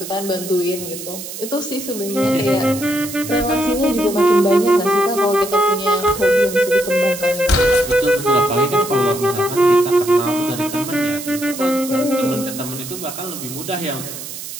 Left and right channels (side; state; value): right; noise; hiss, 10 dB below the sound